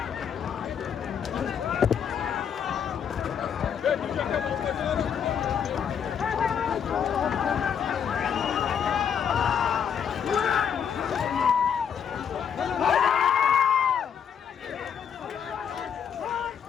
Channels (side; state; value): right; quieter; 7.9 dB